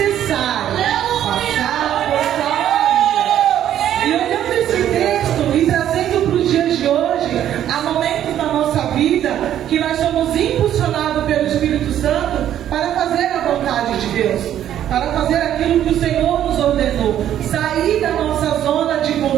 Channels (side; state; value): left; quieter; 11.0 dB